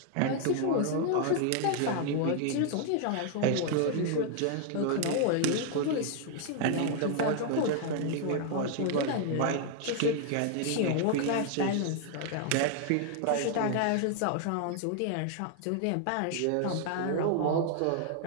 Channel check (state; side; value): different; both; correlation 0.00